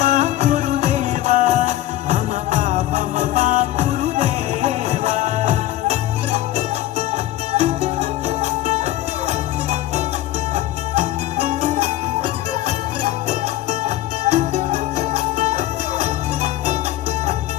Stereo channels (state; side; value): quieter; right; 14.5 dB